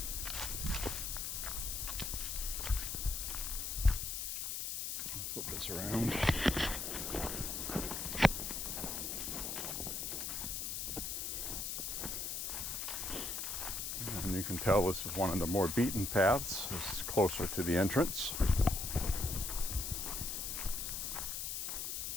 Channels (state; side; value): noise; left; hiss, 3 dB below the sound